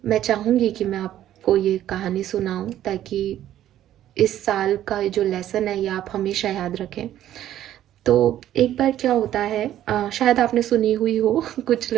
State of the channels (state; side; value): quieter; left; 12.1 dB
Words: मैं चाहूँगी कि मैं आपको ये कहानी सुनाऊँ ताकि इस साल का जो लेसन है ये आप हमेशा याद रखें। तो एक बार क्या होता है, शायद आपने सुनी हुई हो कुछ